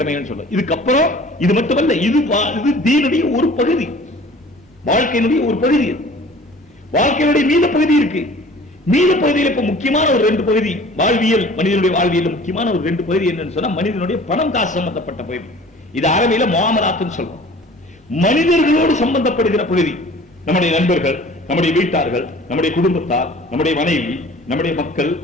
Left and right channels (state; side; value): normal; both; correlation 0.47